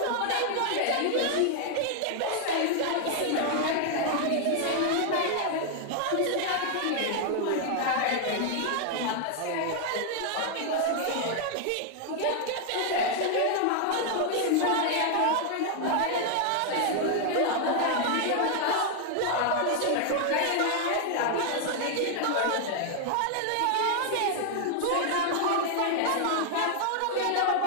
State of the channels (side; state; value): both; different; correlation 0.00